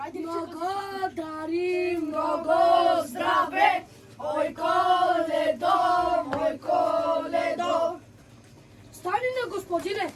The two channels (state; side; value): identical; both; correlation 1.00